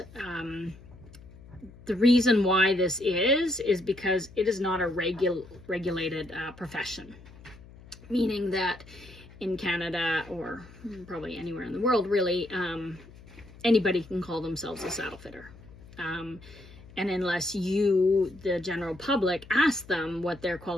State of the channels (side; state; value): left; noise; hum, 20 dB below the sound